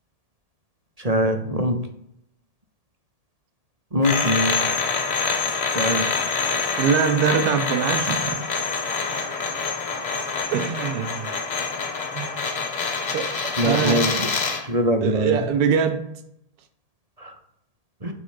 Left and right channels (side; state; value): left; late; 1.7 ms